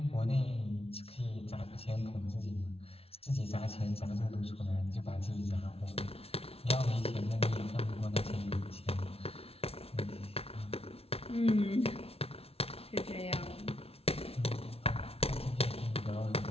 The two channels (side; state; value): right; late; 0.29 ms